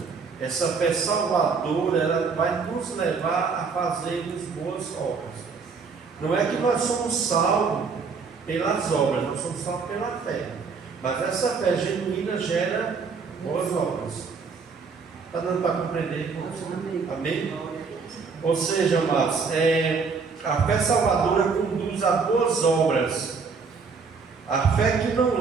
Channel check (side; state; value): left; quieter; 5.1 dB